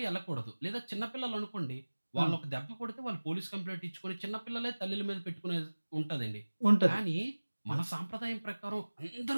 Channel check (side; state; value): both; inverted; correlation -1.00